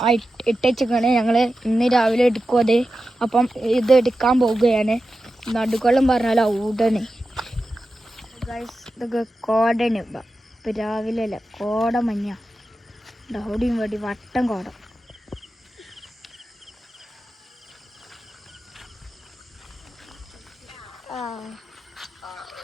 ആ ഇട്ടേക്കാണ് ഞങ്ങൾ ഇന്ന് രാവിലെ എടുക്കും അത്. അപ്പം ഇത് എടുക്കാൻ പോവുകയാണ്. നടുക്കോളം പറഞ്ഞാൽ ഔടണ് ഇതൊക്കെ കോടന്. ഇപ്പം രാവിലെ അല്ല, കോട മഞ്ഞ ഡൗടിയും വേണ്ടി വട്ടം കോട.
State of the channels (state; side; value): normal; both; correlation 0.92